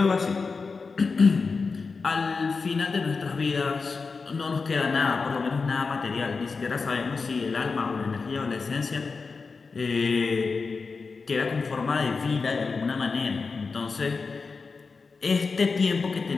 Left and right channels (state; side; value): quieter; right; 4.6 dB